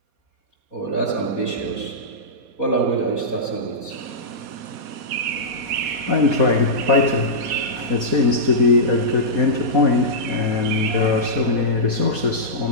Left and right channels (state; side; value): late; left; 4.2 ms